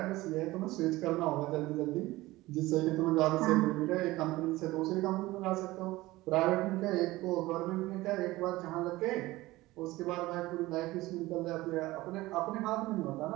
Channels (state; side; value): quieter; left; 18.7 dB